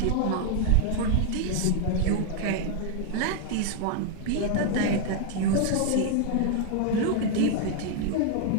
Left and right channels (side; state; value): both; different; correlation 0.00